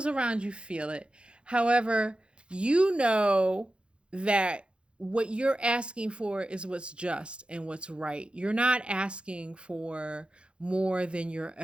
around you feel it. However, you know that what you're asking for is what's just and what's right. You're not asking for more than you're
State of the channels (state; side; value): late; left; 0.056 ms